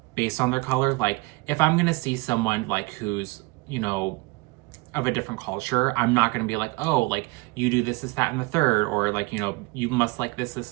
based on their color. Like if I'm going to see someone like who's, you know, of a different culture, I'm not going to be like, oh, like you do this, that, and the third, or like, you know, you must like this,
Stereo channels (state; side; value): quieter; left; 25.0 dB